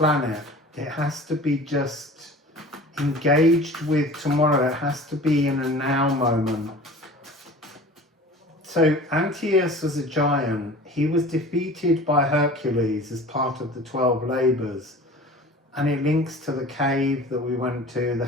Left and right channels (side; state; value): both; normal; correlation 0.41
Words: it. It has to be just engaged with tomorrow. It has to be in a now moment. So Antaeus was a giant. He was defeated by Hercules as part of the 12 labours. And it links to the cave that we went to, the